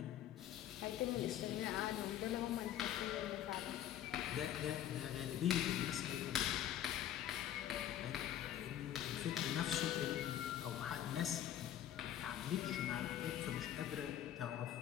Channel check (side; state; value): right; quieter; 11.3 dB